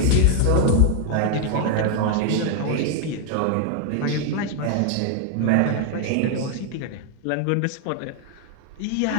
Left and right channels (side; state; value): both; different; correlation 0.01